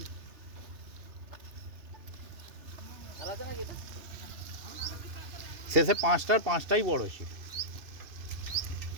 শেষে পাঁচটাই বড় ছিল।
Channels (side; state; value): left; late; 3.0 ms